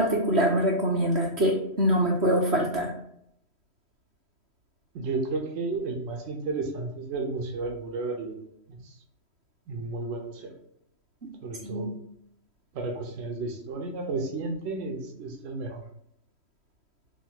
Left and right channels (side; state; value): left; late; 3.1 ms